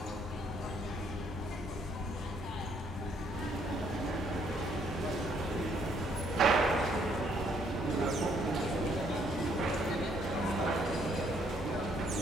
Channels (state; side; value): normal; both; correlation 0.68